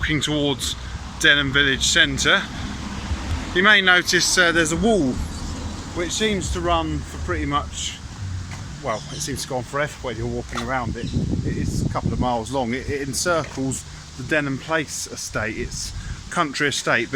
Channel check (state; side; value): identical; both; correlation 1.00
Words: towards Denham village centre. You may notice there's a wall which seems to run for pretty much, well, it seems to go on forever when you're walking around it. It's a couple of miles long. It encircles the Denham Place estate. It's country estate,